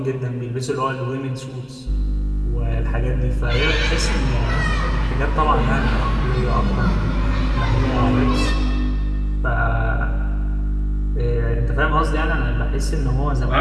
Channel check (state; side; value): identical; both; correlation 1.00